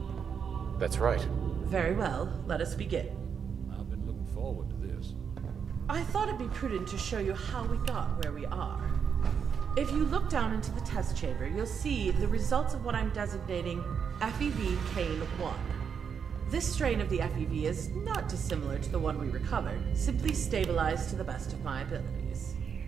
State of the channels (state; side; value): quieter; left; 6.9 dB